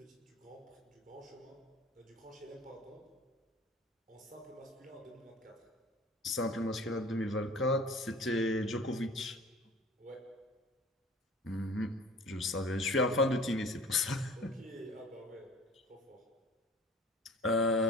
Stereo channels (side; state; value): both; normal; correlation 0.45